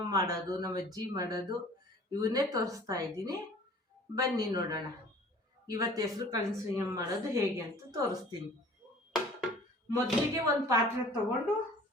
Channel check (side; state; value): both; normal; correlation 0.48